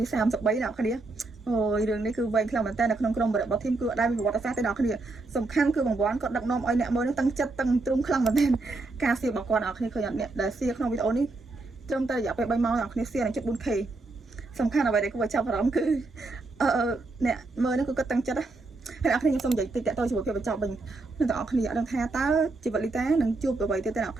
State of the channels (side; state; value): left; quieter; 3.3 dB